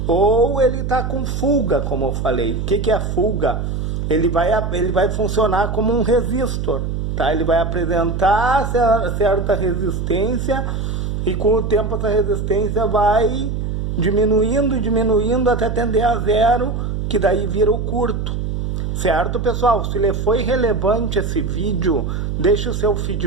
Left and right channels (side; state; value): right; noise; hum, 2 dB below the sound